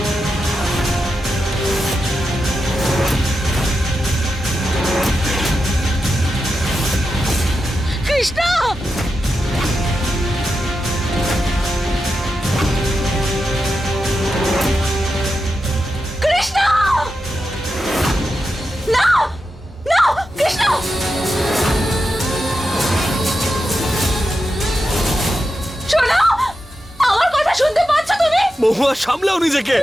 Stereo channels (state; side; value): normal; both; correlation 0.89